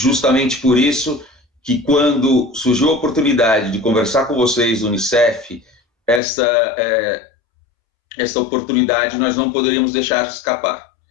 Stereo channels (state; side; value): drops out; right; at 6.2 s